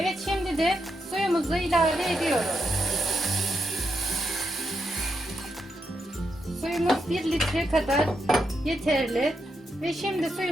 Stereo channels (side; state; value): both; normal; correlation 0.82